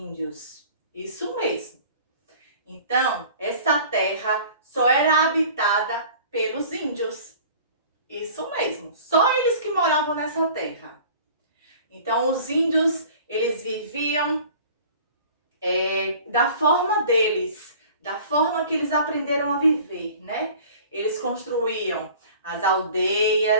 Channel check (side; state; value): both; inverted; correlation -0.46